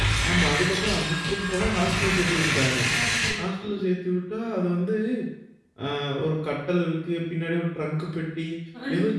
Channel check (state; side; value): identical; both; correlation 1.00